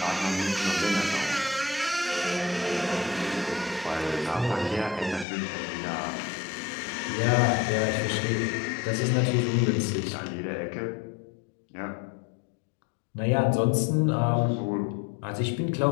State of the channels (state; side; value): drops out; right; at 5.2 s